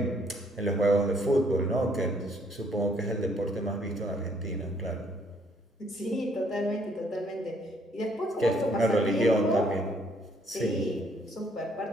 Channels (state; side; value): normal; both; correlation 0.66